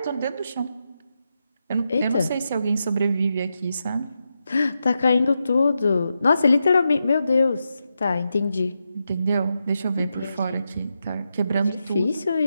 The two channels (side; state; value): both; inverted; correlation -0.87